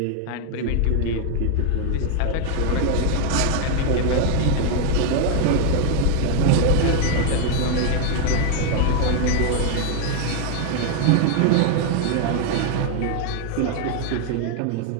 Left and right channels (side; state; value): both; different; correlation 0.00